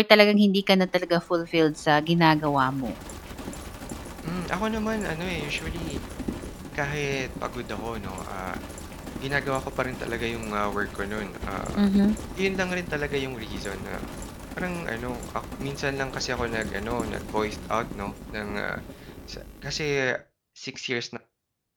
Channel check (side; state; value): both; identical; correlation 1.00